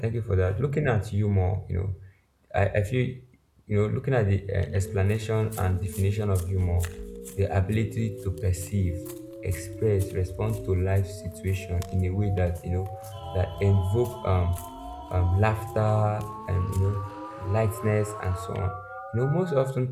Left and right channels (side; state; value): both; identical; correlation 1.00